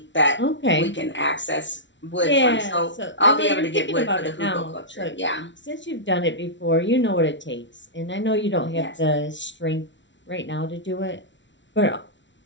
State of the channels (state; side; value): late; right; 0.54 ms